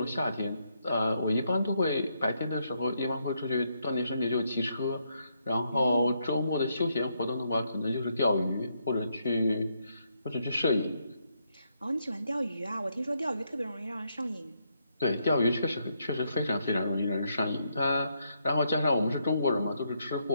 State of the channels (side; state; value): both; inverted; correlation -0.77